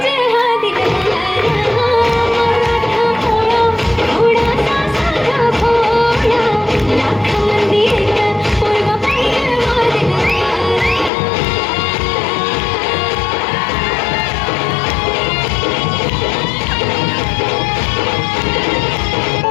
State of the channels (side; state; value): right; drops out; at 11.1 s